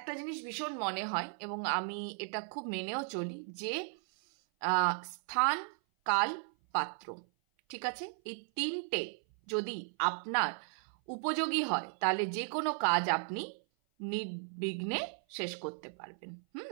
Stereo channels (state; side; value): silent; left; 54 dB below the other